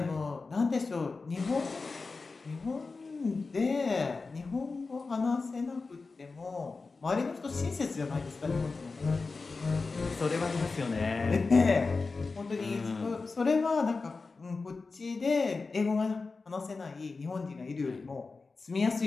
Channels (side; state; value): right; quieter; 4.1 dB